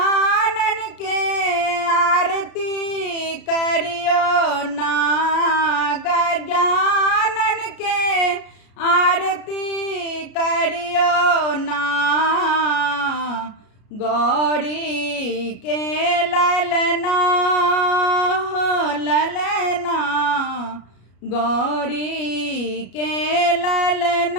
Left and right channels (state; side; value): late; right; 33 ms